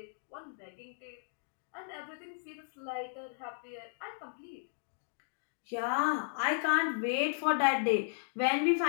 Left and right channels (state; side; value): silent; right; digital silence